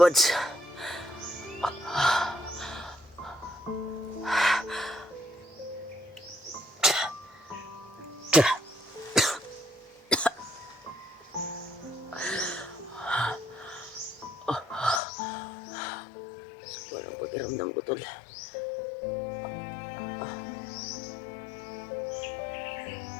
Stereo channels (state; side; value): drops out; right; at 15.0 s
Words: Walang pakiramdam ko tol.